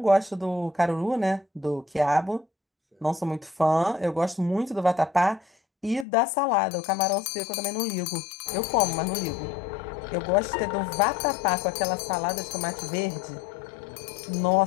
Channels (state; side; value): drops out; right; at 6.1 s